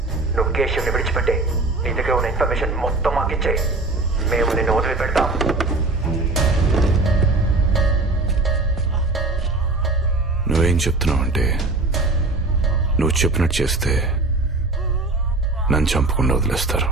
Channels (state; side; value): quieter; left; 3.3 dB